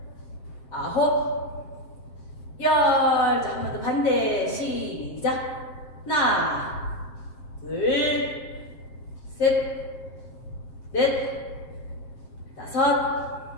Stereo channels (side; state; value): right; late; 7.6 ms